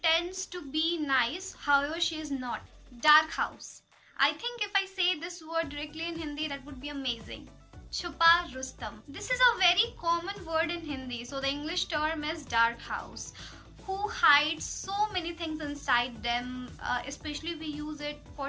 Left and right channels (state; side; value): identical; both; correlation 1.00